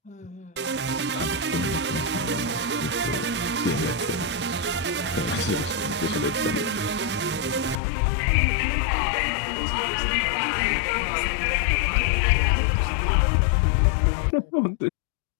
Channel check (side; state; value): right; drops out; at 7.8 s